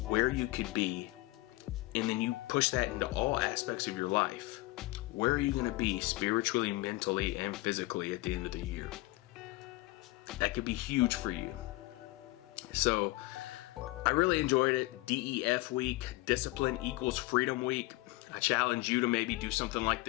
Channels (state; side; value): quieter; right; 20.5 dB